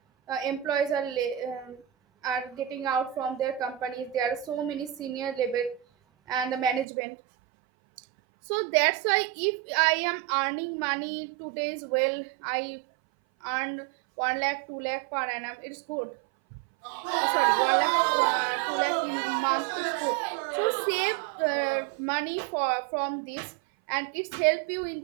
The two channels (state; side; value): drops out; left; at 6.9 s